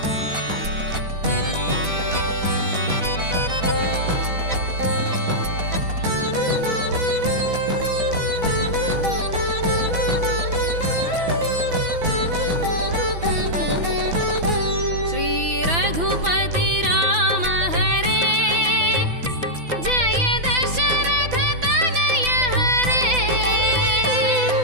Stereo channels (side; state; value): left; late; 6.0 ms